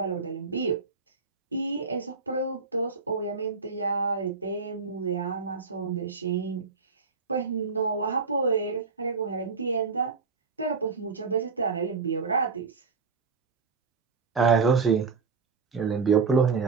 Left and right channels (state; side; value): quieter; left; 4.8 dB